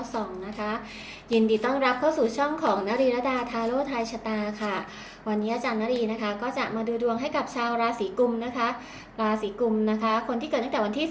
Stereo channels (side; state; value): both; identical; correlation 1.00